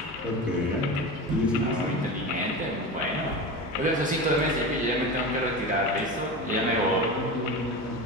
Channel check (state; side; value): normal; both; correlation 0.27